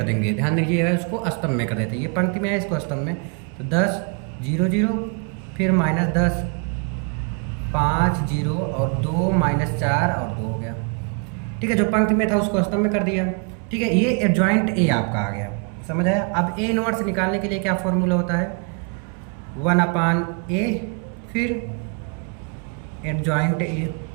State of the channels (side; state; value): left; quieter; 37.9 dB